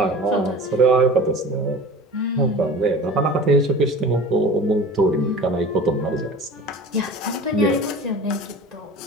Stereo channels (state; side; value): normal; both; correlation 0.38